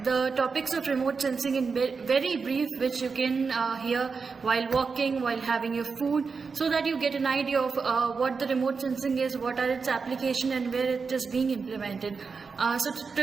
the topics of remote sensing in very brief, which you can hear while walking, while having your food, so that you get an idea of what the remote sensing is, what are its application and where it is being implemented.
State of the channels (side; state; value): left; quieter; 5.0 dB